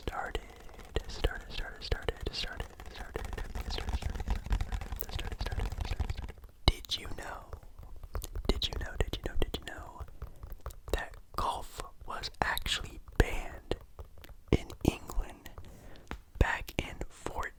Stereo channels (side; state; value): both; identical; correlation 1.00